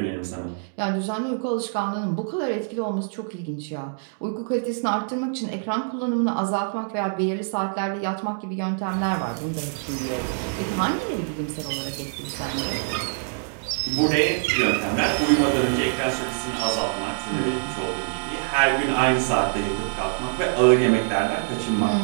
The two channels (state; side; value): silent; left; digital silence